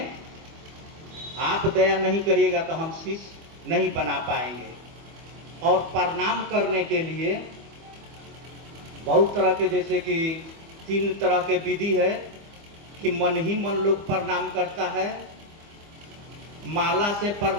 आप दया नहीं करिएगा तो हम शिष्य नहीं बना पाएंगे। और प्रणाम करने के लिए बहुत तरह के, जैसे कि 3 तरह के विधि है कि मन ही मन लोग प्रणाम करता है, माला से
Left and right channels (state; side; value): late; left; 25 ms